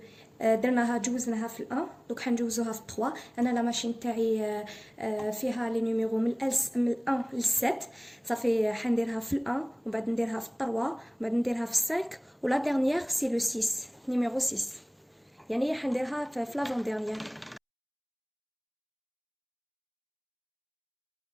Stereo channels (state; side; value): identical; both; correlation 1.00